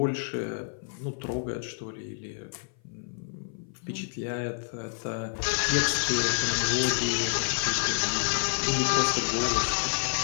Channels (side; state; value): right; silent; 56 dB below the other